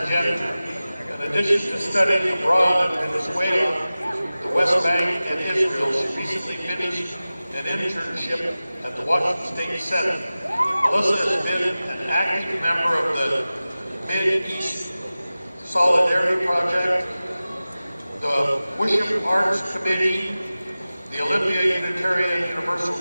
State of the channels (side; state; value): both; inverted; correlation -0.96